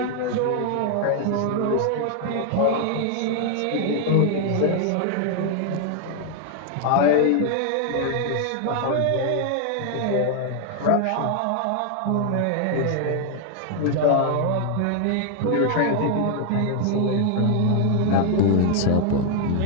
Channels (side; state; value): both; different; correlation 0.00